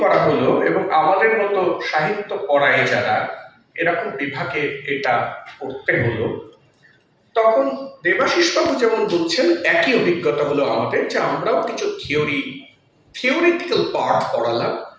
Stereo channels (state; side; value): identical; both; correlation 1.00